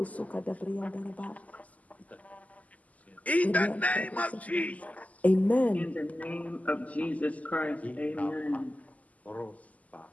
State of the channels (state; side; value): late; right; 0.074 ms